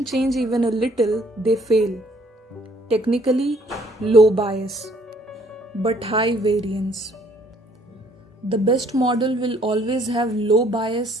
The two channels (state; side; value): normal; both; correlation 0.63